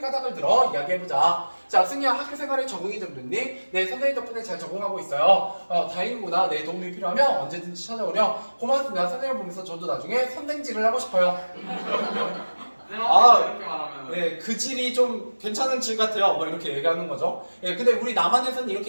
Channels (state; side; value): inverted; both; correlation -1.00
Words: 들어 이야기해보자. 자, 승희야 학교 생활에 적응이 좀 됐니? 네, 선생님 덕분에 잘 적응하고 있어요. 다행이구나. 내 도움이 필요하면 언제든지 찾아오렴. 고맙습니다. 선생님을 보면서 저도 나중에 선생질을 하고 싶어요. 이렇게 말하면 네, 그 질이 좀 괜찮은 질 같아요. 뭐 이렇게 얘기하는 거죠. 근데 우리 남한에서는